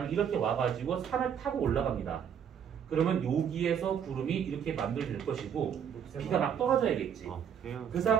이렇게 와가지고 산을 타고 올라갑니다. 그러면 여기에서 구름이 이렇게 만들어질 것이고 비가 막 떨어져야겠지. 그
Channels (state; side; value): quieter; left; 8.2 dB